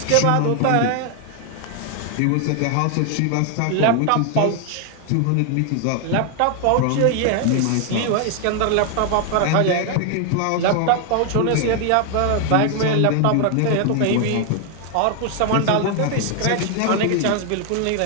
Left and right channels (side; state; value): both; different; correlation 0.00